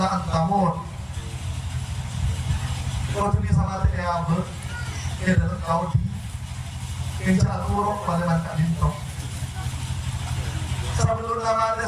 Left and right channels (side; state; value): both; identical; correlation 1.00